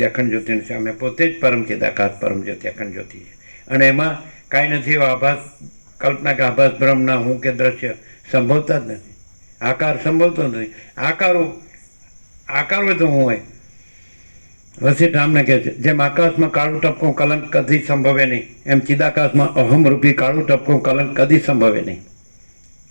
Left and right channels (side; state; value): both; inverted; correlation -1.00